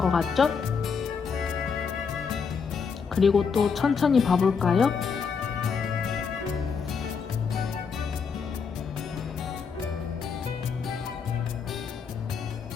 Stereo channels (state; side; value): quieter; right; 5.8 dB